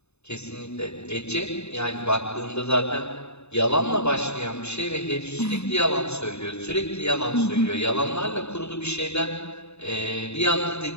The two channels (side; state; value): right; late; 0.80 ms